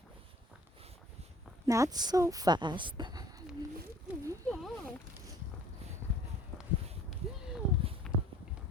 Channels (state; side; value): normal; both; correlation 0.52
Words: Not so fast.